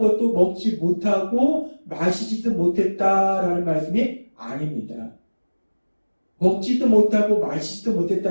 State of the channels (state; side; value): inverted; both; correlation -1.00